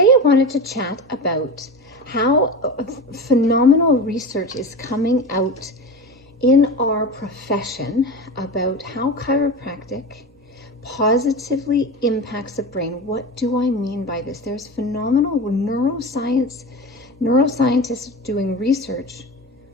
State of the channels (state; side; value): normal; both; correlation 0.27